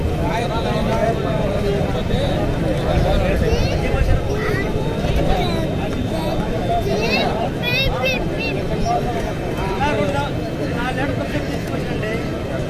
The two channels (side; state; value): both; identical; correlation 1.00